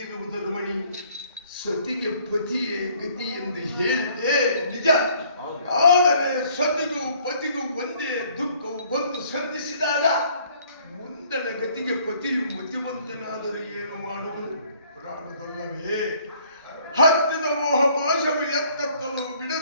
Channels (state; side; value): inverted; both; correlation -0.60